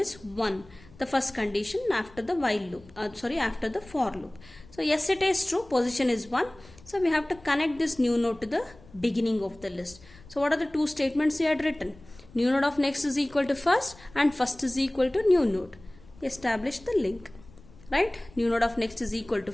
1, the first condition after the while loop, after the for loop. So yes, it is true, position is 1, so we have to connect this new node to the beginning of the list. So what are the two statements we had written? New node of next is equal to first and first is equal to new node. Establish the link, right? New node of next is equal to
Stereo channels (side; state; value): left; noise; rumble, 23 dB below the sound